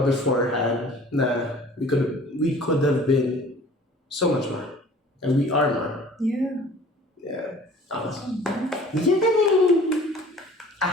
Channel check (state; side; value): normal; both; correlation 0.49